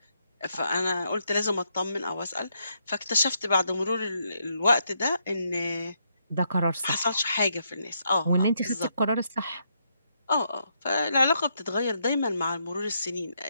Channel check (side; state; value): both; inverted; correlation -0.77